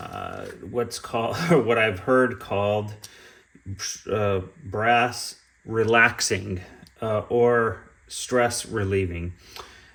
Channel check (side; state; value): both; identical; correlation 1.00